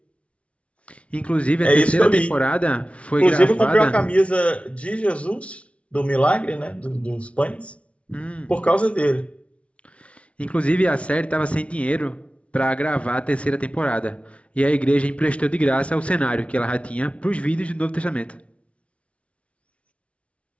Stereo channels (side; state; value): right; late; 0.062 ms